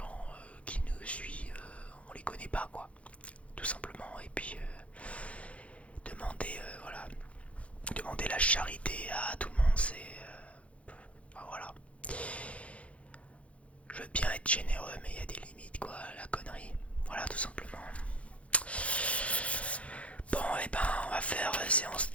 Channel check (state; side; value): late; right; 0.063 ms